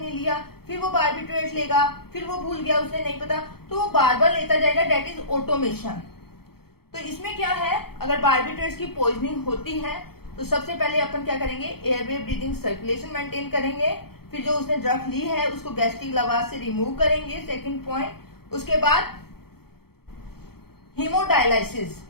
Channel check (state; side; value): late; right; 0.95 ms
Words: लिया, फिर वो बार्बिट्रेट्स लेगा, फिर वो भूल गया, उसे नहीं पता, तो वो बार बार लेता जाएगा, डेट इज ऑटोमेशन। तो इसमें क्या है, अगर बार्बिट्रेट्स की पॉइजनिंग होती है तो सबसे पहले अपन क्या करेंगे, एयरवे ब्रीदिंग सर्कुलेशन मेंटेन करेंगे, फिर जो उसने ड्रग ली है उसको गैस्ट्रिक लवाज से रिमूव करेंगे, सेकंड पॉइंट। उसके बाद हीमोडायलाइसिस,